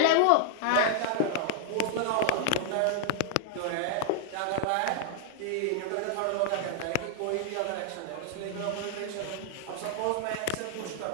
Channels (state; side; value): different; both; correlation -0.01